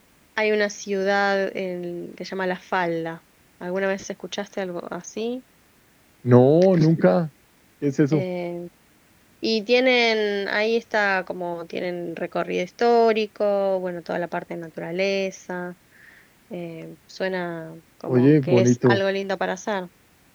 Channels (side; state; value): both; identical; correlation 1.00